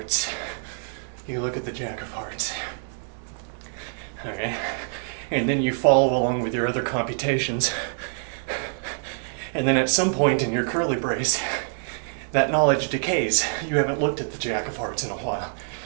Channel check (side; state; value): left; silent; digital silence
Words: You look at the Jack of Hearts. Okay? And then you follow along with your other computations. And then at some point in your curly brace, that knowledge decays. You haven't looked at the Jack of Hearts in a while.